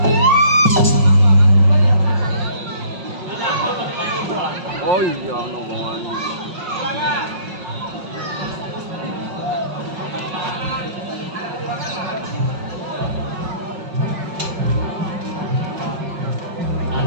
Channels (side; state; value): left; late; 5.5 ms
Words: Oh iya, ngomongan.